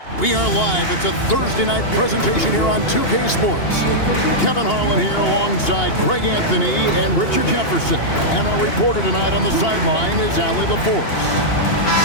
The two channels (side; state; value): right; late; 2.8 ms